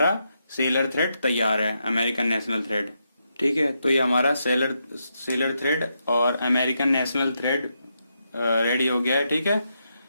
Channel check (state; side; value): inverted; both; correlation -0.82